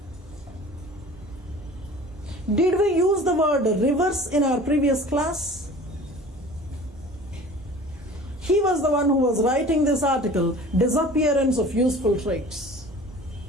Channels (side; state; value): both; normal; correlation 0.43